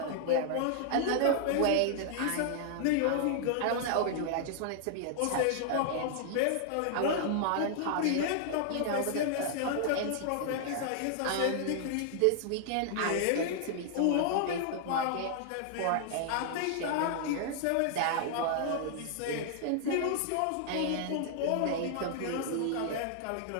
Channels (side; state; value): both; different; correlation -0.01